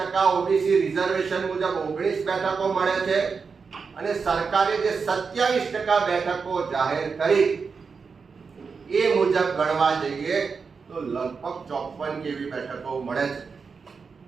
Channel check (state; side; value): quieter; left; 5.2 dB